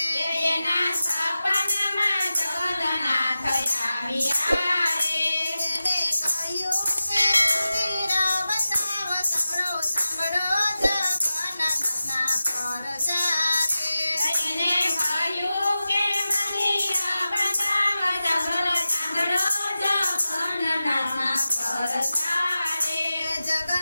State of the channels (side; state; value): both; inverted; correlation -0.94